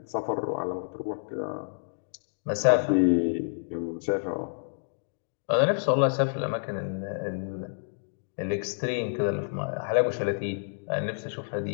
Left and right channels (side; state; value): right; silent; digital silence